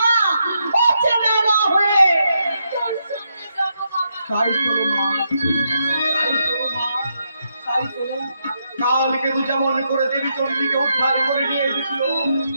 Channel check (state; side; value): inverted; both; correlation -0.80